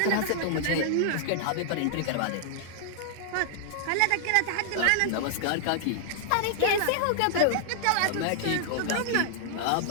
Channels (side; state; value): both; different; correlation -0.01